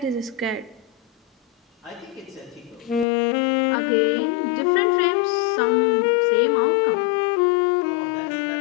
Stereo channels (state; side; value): drops out; right; at 3.1 s